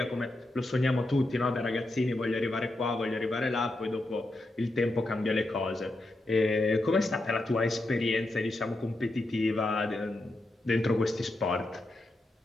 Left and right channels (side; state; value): both; normal; correlation 0.86